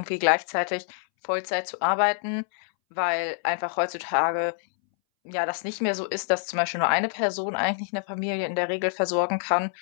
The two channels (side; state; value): right; silent; 61 dB below the other